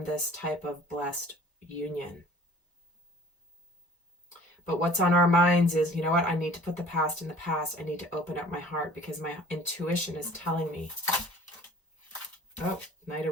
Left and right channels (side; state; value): both; normal; correlation 0.49